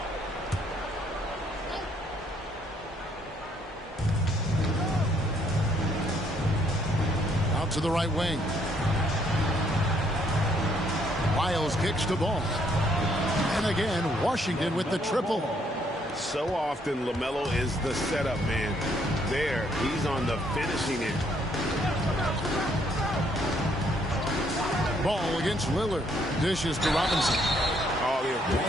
Out to the right wing. Miles kicks to Ball. And again, Washington with the triple. So often, LaMelo is the setup man. There, he's on the finishing end. Ball against Lillard. Dishes to Robinson. Oh, the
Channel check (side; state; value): both; normal; correlation 0.69